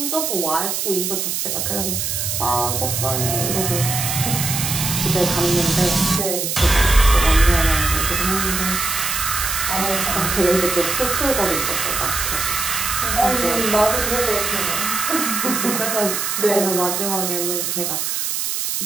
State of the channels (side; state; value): right; noise; hiss, 1 dB below the sound